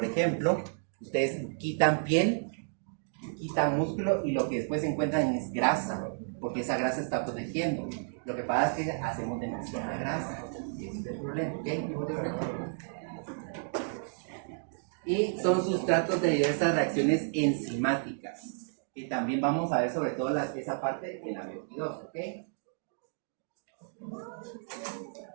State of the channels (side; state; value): left; silent; digital silence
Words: ejemplo, ustedes quitan piel, quitan músculo y lo que después encuentran es grasa, porque esa grasa está protegiendo. Lo que pasa es que hacemos demasiada grasa, y ese es el problema, ¿ok? Y son sustratos de diversas reacciones enzimáticas, que también vamos a ver sobre todo esa parte en la 22, ¿ok?